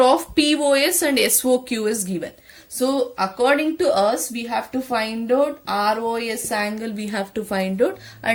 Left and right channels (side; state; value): both; identical; correlation 1.00